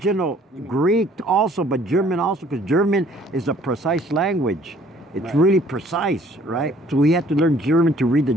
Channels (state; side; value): normal; both; correlation 0.58